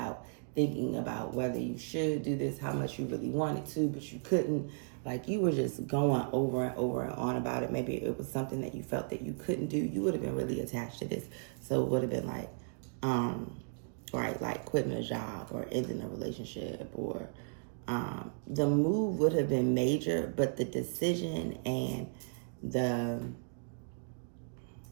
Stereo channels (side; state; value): left; silent; digital silence